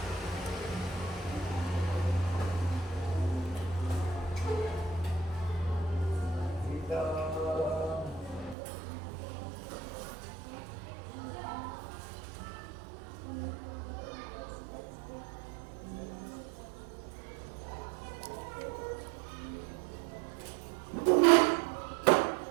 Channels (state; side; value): drops out; left; at 8.6 s